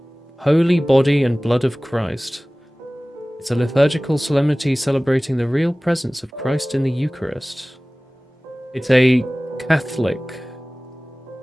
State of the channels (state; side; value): normal; both; correlation 0.98